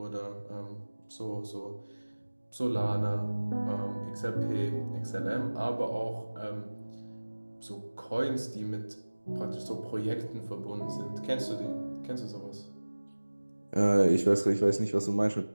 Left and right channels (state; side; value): inverted; both; correlation -1.00